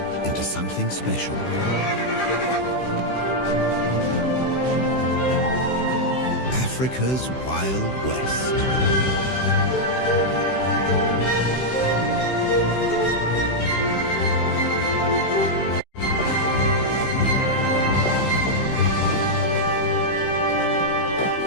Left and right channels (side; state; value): right; late; 16 ms